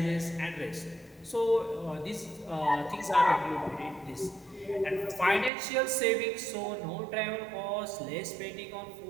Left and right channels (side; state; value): left; drops out; at 5.5 s